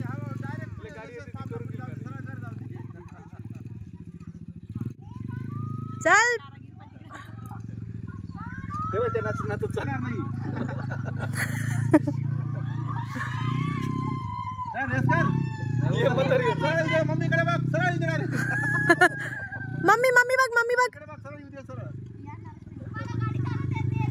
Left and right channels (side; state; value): both; identical; correlation 1.00